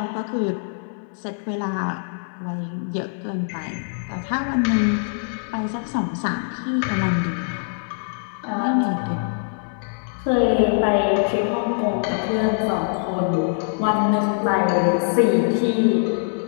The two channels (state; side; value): silent; right; 63 dB below the other